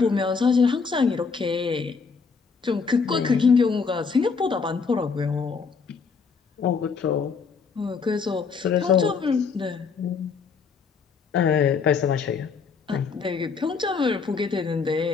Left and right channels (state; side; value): quieter; right; 5.3 dB